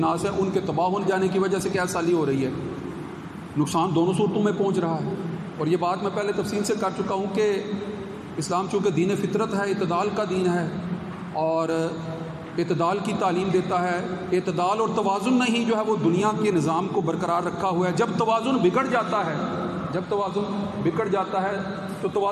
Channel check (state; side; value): identical; both; correlation 1.00